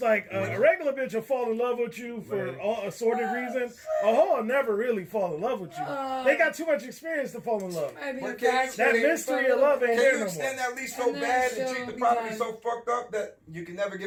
a regular bitch will fall in love with you for Right. all assorted reasons. A hoe will never really fall in love with you. They got too much experience to fall in love. Might be But a can you- fact That check mystery for of love ain't Can there you no extend more. that lease so And then bad and she'll treat the be property done. so fucked up that you can never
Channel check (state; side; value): identical; both; correlation 1.00